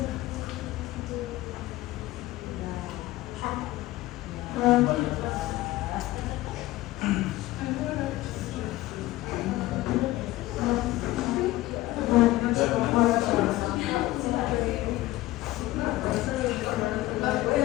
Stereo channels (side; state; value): right; quieter; 17.2 dB